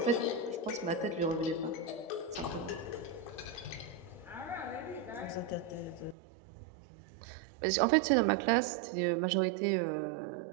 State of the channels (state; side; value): drops out; left; at 6.2 s